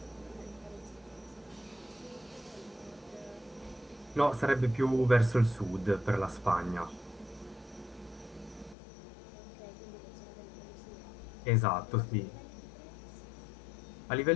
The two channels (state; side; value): drops out; right; at 8.8 s